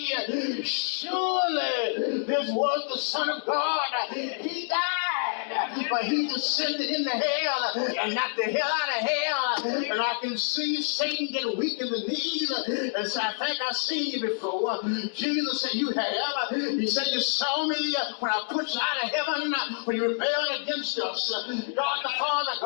surely this was the Son of God. He died, but he descended into hell and knocked the hell out of hell. And I can see Satan get weak in the knees and say, I think I've seen you before. Jesus said, you have. He said, you saw me when I put you out of heaven, when you rebelled against us. God the Father,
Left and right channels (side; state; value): right; silent; digital silence